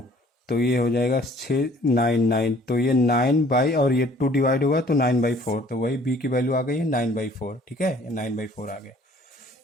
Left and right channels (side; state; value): both; normal; correlation 0.56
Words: तो ये हो जाएगा 9 तो ये 9 और ये 2 डिवाइड होगा तो 9/4, तो वही b की वैल्यू आ गई है 9/4। ठीक है, ये 9/4 आ गया।